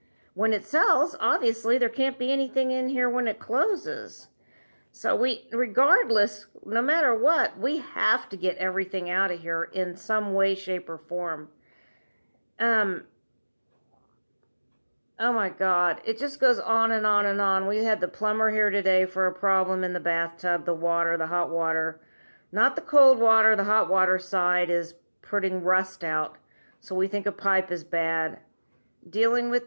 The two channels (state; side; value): inverted; both; correlation -1.00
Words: when it sells, obviously there can't be anything in here when it closes. So regardless, no matter what, we have to get everything out of here in some way, shape, or form. Oh my God, it just goes on and on and on. We had the plumber here today for a problem in the bathtub, the water, the hot water. Not the cold water, the hot water side is putting rust out. So we think a pipe is bad. Dealing